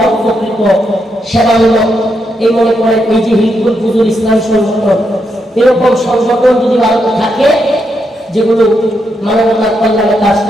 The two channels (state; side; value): normal; both; correlation 0.81